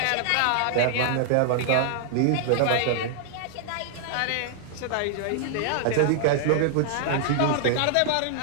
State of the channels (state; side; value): different; both; correlation 0.00